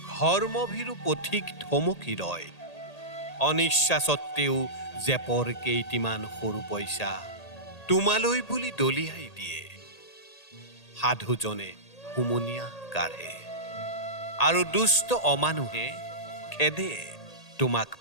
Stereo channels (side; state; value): right; late; 1.8 ms